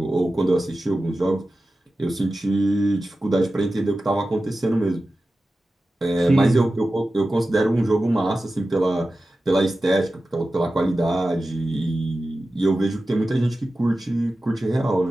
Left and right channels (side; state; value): both; normal; correlation 0.94